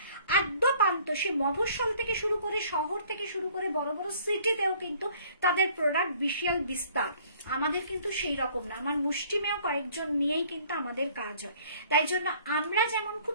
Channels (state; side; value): inverted; both; correlation -0.57